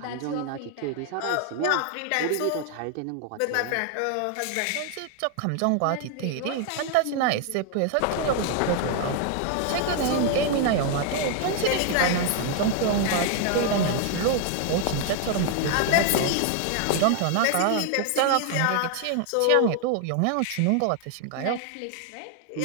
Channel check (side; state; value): both; different; correlation 0.00